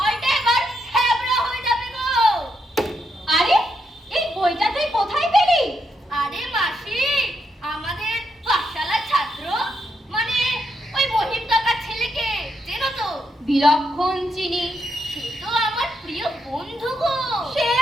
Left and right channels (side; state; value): both; normal; correlation 0.80